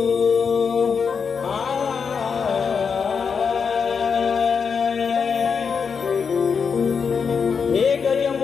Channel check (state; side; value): quieter; right; 6.0 dB